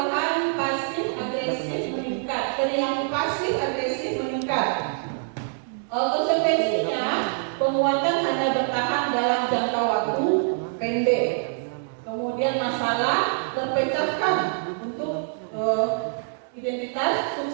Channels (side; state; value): left; silent; digital silence